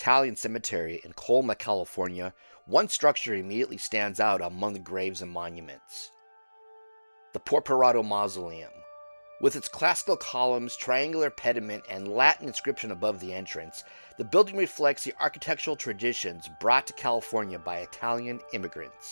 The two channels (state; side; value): inverted; both; correlation -1.00